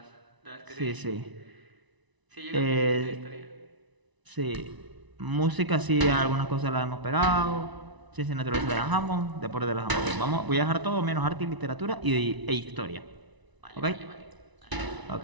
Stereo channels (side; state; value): left; late; 1.0 ms